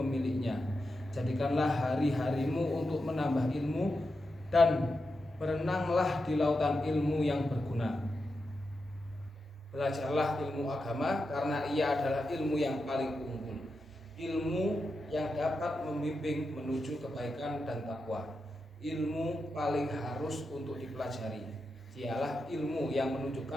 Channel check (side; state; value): both; normal; correlation 0.88